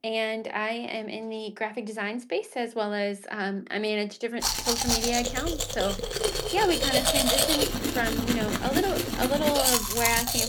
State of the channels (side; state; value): both; identical; correlation 1.00